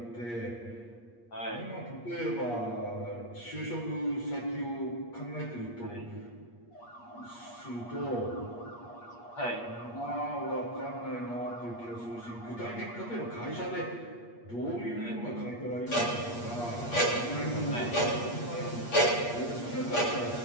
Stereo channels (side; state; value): right; late; 8.4 ms